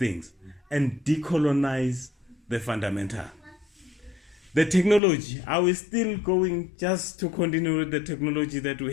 and decolonize the fundamental? The technology, are we still going just to continue with the technology that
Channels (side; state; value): right; drops out; at 5.0 s